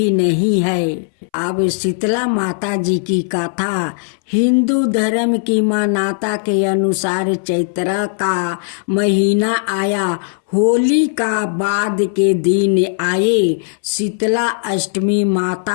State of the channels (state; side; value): silent; right; 65 dB below the other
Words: नहीं है। अब शीतला माता जी की कथा। हिंदू धर्म की मान्यता के अनुसार चैत्र का महीना आया, होली का बाद के दिन आए, शीतला अष्टमी